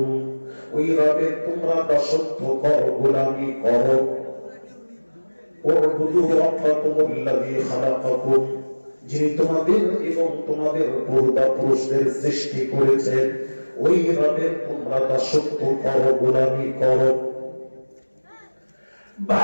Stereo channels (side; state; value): both; inverted; correlation -1.00